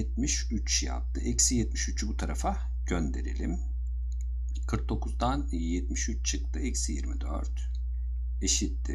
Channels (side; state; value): both; identical; correlation 1.00